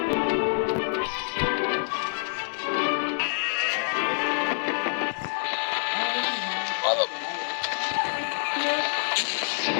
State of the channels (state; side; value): silent; right; digital silence